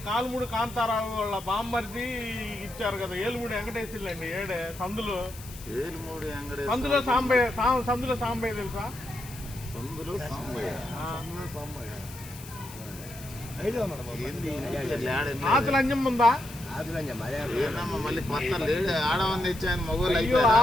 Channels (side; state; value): left; noise; hiss, 16 dB below the sound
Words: కాలుమూడి కాంతారావు వాళ్ళ బామ్మర్ది ఇచ్చారు కదా ఏలుమూడి వెంకటేశ్వర్లు అండి. ఏడే సందులో ఏలుమూడి వెంకటేశ్వర సందులో సాంబయ్య తెలుసా? సందులో సాంబయ్య ఆతుల అంజమ్మ ఉందా? ఏందమ్మా మళ్ళీ కొత్త లేడు ఆడవని తెచ్చాను మగోళ్ళు. అయ్యో